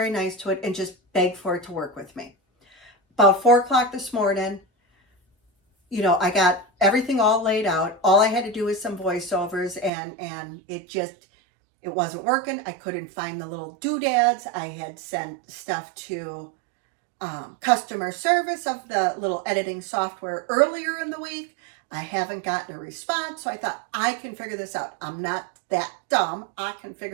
nice to it and just beg for it to work with me. About 4 o'clock this morning, I got everything all laid out. All I had to do was some voiceovers, and it wasn't working. I couldn't find the little doodads. I had sent stuff to customer service of the little editing software earlier in the week. I haven't gotten a response, so I thought, I can figure this out. I'm not that dumb. I can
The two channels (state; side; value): drops out; left; at 9.9 s